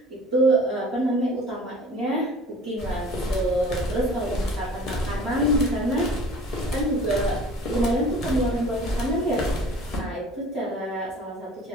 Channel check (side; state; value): both; normal; correlation 0.45